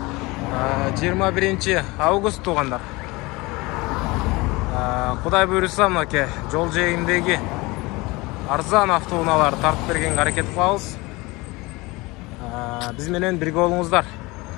21 август туғандар. Құдай бұйырса мынаке жол жиегіндегі арзан автоунааларды тартып берген әрекет қылабыз. Біз менен бірге болуңуздар.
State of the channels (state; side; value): quieter; right; 23.1 dB